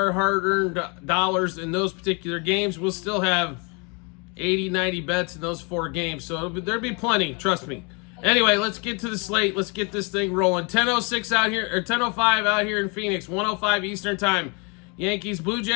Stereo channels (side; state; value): right; quieter; 32.4 dB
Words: hard-earned dollars in those particular games. We'll still have 80, 90 bets in those 4 games, so there'll be plenty, trust me. Anyway, let's get to the slate. Let's get this thing rolling. 10:06 out here, or 10:05 out here in Phoenix, 1:05 Eastern Time. Yankees, Blue